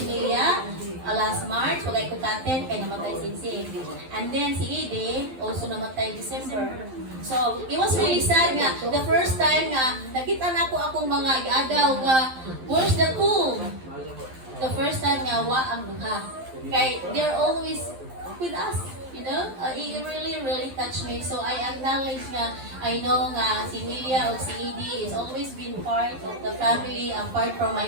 Milia last March, wagay ko katen, kay namatay si And then si Edie, also namatay December. So, it was really sad nga. The first time nga, nakita na ko akong mga agaw nga, where's the cool? The first time nga, wa ang duha. Kay, they're always with us. You know, it really touched me. So I acknowledge nga, I know nga si Milia o si Edie is always been part of the family, apart from my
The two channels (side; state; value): left; late; 12 ms